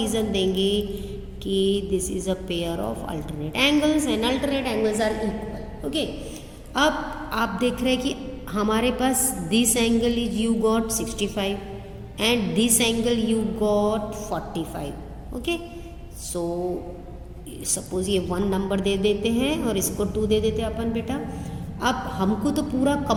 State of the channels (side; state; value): both; identical; correlation 1.00